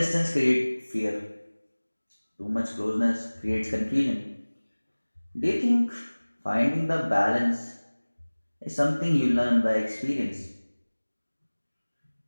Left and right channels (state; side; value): inverted; both; correlation -1.00